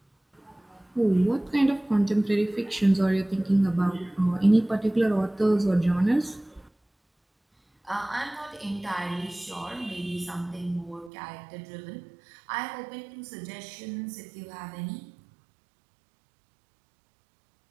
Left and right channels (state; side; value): drops out; left; at 11.1 s